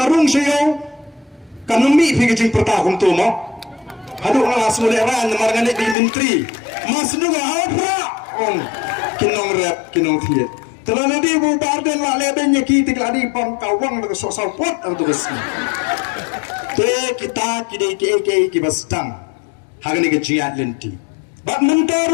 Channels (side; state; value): right; drops out; at 6.0 s